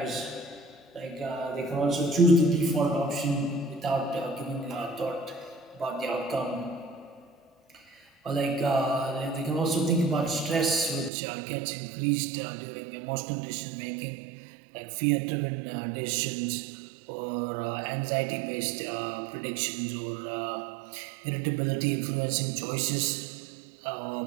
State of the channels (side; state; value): left; drops out; at 11.1 s